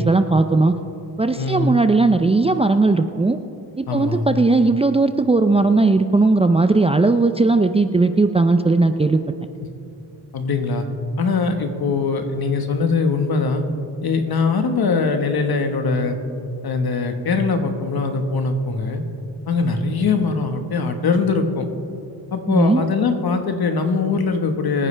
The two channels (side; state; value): both; normal; correlation 0.61